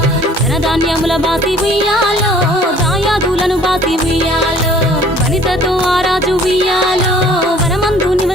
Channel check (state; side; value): normal; both; correlation 0.54